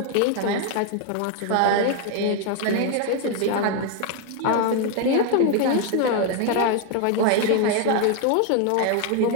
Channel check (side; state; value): both; different; correlation 0.01